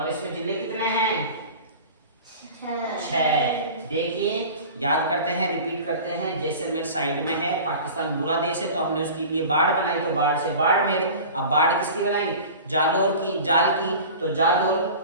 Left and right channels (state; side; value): inverted; both; correlation -0.37